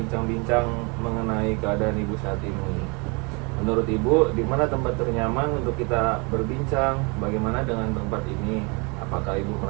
mengenai keadaan Ibu saat ini? Menurut Ibu, di mana tempat ternyaman untuk kita berbincang? Bagaimana dengan tempat ini? Apakah Ibu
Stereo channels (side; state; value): left; quieter; 30.7 dB